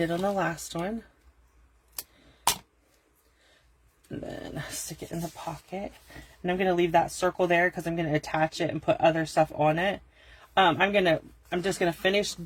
on the last one. And then stick it in the pocket. And I'm going to leave that circle there because I'm going to attach it and put other stuff on it. I'm just going to finish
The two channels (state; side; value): identical; both; correlation 1.00